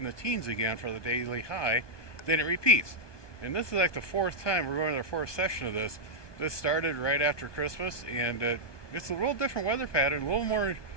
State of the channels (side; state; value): right; late; 1.2 ms